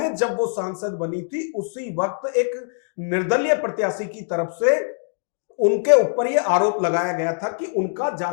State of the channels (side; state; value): right; silent; digital silence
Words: जब वो सांसद बनी थी, उसी वक्त एक निर्दलीय प्रत्याशी की तरफ से उनके ऊपर यह आरोप लगाया गया था कि उनका